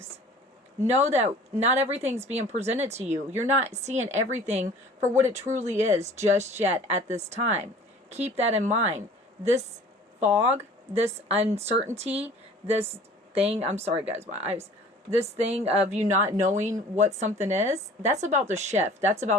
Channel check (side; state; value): both; normal; correlation 0.47